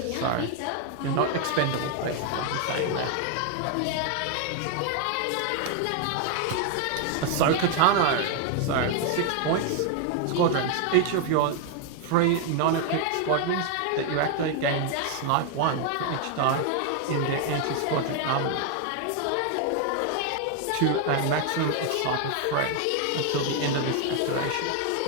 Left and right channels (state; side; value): different; both; correlation 0.01